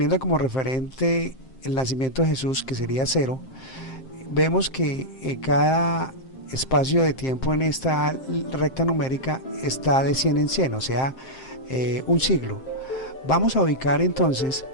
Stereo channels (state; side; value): late; right; 7.6 ms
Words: como referente el nacimiento de Jesús, que sería 0, vemos que cada espacio de tiempo en esta recta numérica está de 100 en 100, o sea, un siglo. Vamos a ubicar entonces,